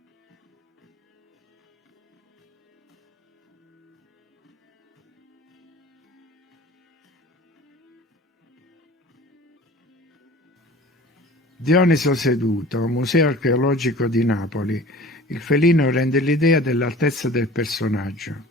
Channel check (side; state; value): both; normal; correlation 0.43